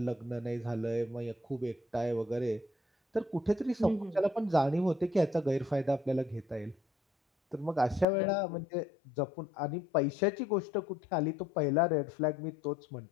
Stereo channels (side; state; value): right; drops out; at 8.1 s